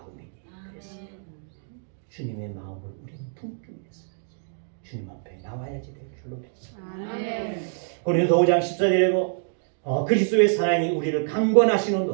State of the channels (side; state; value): left; silent; digital silence